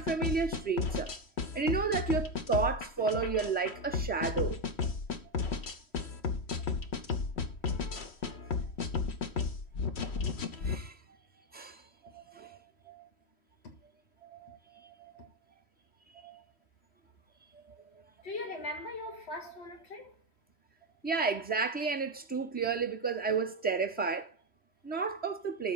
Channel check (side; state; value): right; late; 3.1 ms